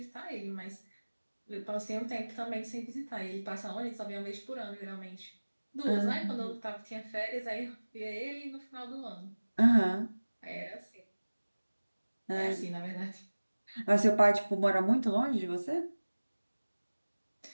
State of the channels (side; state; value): both; inverted; correlation -1.00